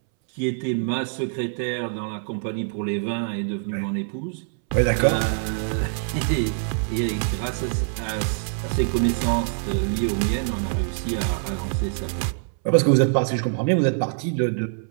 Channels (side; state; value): left; silent; 62 dB below the other